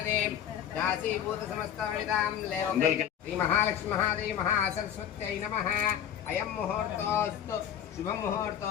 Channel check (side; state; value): right; quieter; 9.6 dB